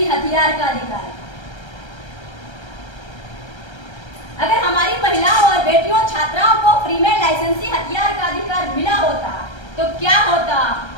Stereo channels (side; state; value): right; late; 1.3 ms